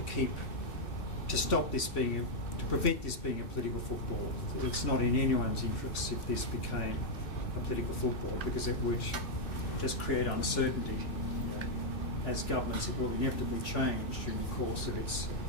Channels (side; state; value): right; late; 2.6 ms